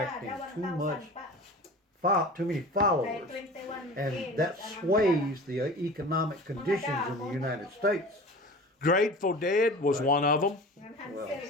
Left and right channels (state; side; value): normal; both; correlation 0.37